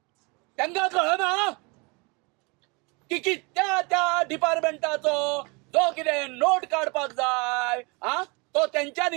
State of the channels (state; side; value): quieter; left; 28.7 dB